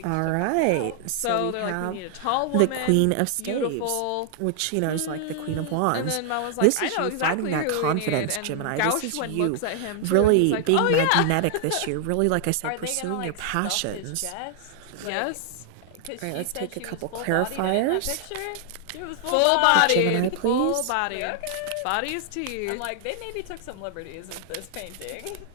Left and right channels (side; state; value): both; different; correlation 0.00